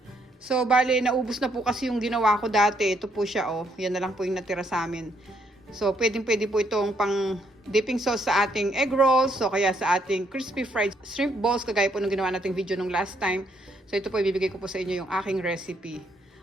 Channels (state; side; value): normal; both; correlation 0.72